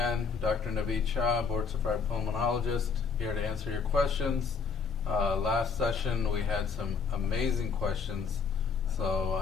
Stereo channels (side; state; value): right; quieter; 5.6 dB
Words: Dr. Naveed Shah, board-certified pulmonologist, here to answer your questions. Last session, we had some amazing questions,